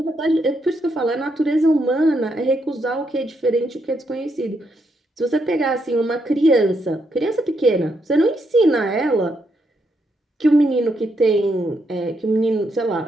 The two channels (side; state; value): both; normal; correlation 0.78